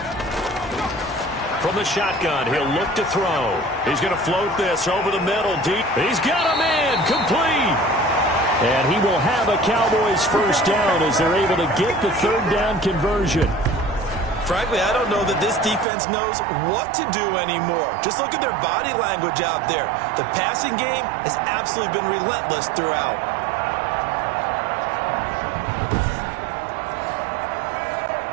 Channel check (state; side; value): drops out; left; at 15.9 s